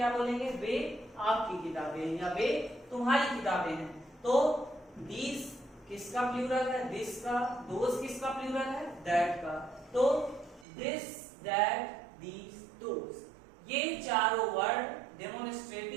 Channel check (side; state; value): left; drops out; at 10.7 s